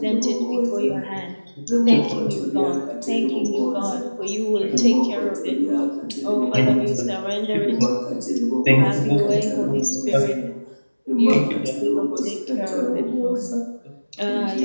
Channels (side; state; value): both; inverted; correlation -1.00